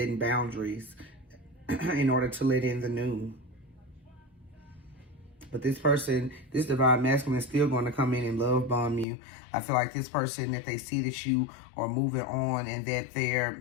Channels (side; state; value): right; drops out; at 9.1 s